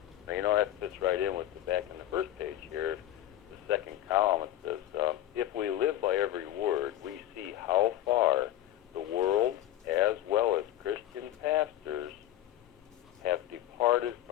Now, you know, that fits right in with the back in the first page here, the second column. It says, if we live by every word, we see how far the world, as well as Christian pastors, have departed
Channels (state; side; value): quieter; right; 13.1 dB